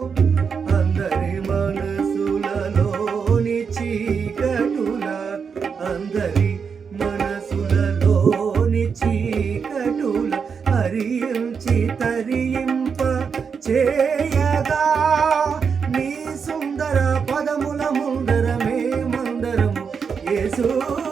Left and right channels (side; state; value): left; quieter; 6.1 dB